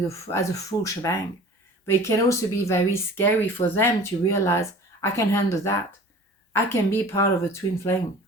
as a full shebang. But it can also be very scary for them to realize, I can handle that. I can be part of a twin flame.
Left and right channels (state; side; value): normal; both; correlation 0.43